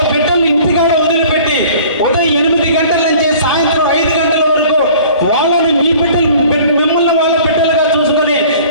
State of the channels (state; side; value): inverted; both; correlation -0.48